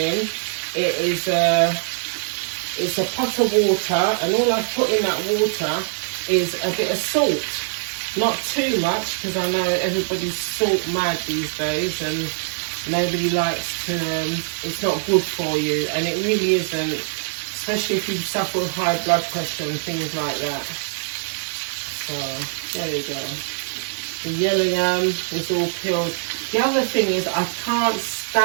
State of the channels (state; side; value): silent; left; digital silence